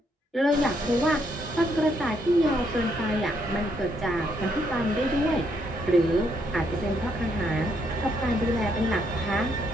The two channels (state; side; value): normal; both; correlation 0.74